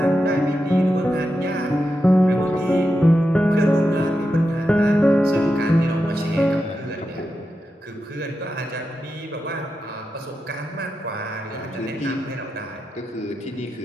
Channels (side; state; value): both; normal; correlation 0.88